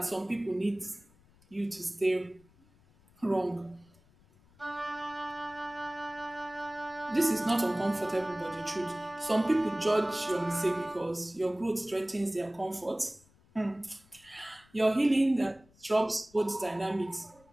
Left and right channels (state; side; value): noise; left; rumble, 29 dB below the sound